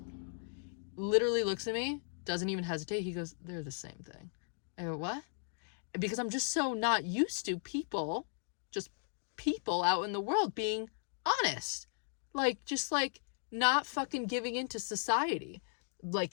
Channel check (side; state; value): right; silent; digital silence